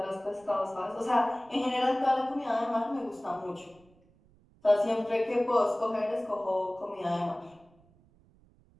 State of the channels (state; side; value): noise; right; rumble, 30 dB below the sound